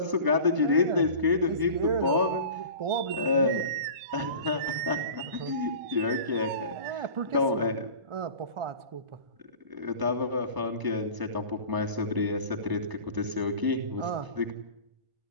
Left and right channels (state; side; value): late; left; 1.0 ms